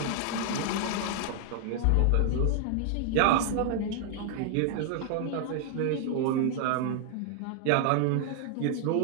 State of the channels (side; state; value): both; different; correlation 0.00